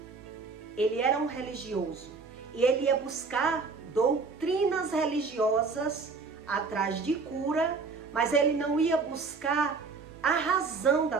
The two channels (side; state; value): left; quieter; 4.5 dB